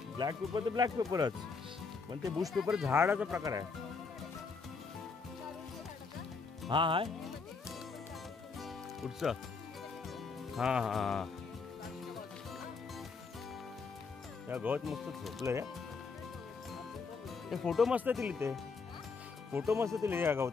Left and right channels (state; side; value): quieter; right; 4.7 dB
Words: ब्लॅक पेपर तर ब्लॅक पेपरच. पण ते बुश पेपर झाडाचा प्रकार आहे. हा हाय कुठचं? हा हा त्या गवत मस्त झोपलंय. ते फोटो मस्त येतील. ते फोटो मस्त येतील या